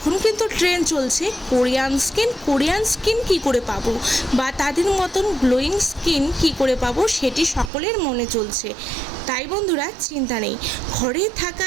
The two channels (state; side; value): drops out; left; at 7.7 s